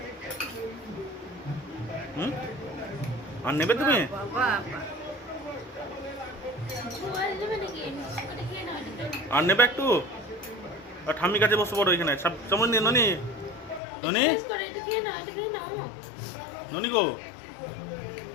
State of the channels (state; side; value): drops out; right; at 13.8 s